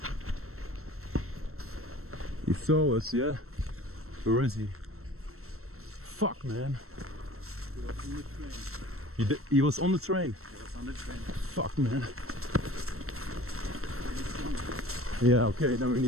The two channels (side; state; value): left; late; 0.63 ms